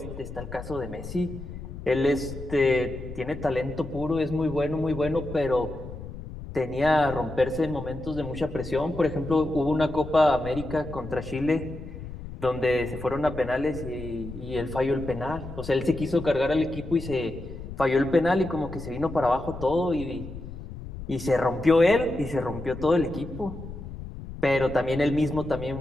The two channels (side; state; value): left; noise; rumble, 11 dB below the sound